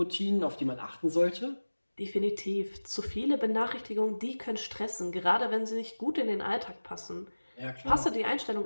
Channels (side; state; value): both; inverted; correlation -1.00